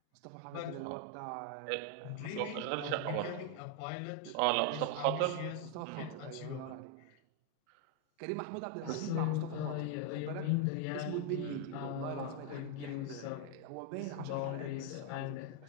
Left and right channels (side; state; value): both; different; correlation 0.01